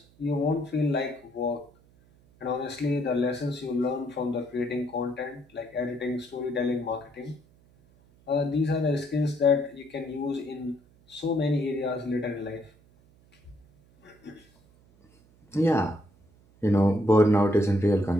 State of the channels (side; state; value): right; noise; hum, 29 dB below the sound